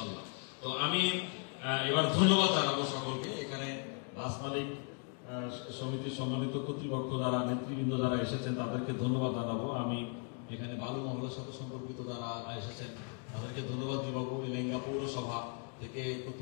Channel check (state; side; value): quieter; right; 40.0 dB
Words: তো আমি এবার ধন্যবাদ জানাবো সকলকে। এখানে বাস মালিক সমিতির সম্মানিত কর্তৃপক্ষ যারা নেতৃবৃন্দ যারা এসেছেন তাদেরকে ধন্যবাদ জানাবো। আমি এখানে বালু মহলের সাথে সম্পর্কিত যারা এসেছেন তাদেরকে ধন্যবাদ জানাবো। এলেঙ্গা পৌরসভা থেকে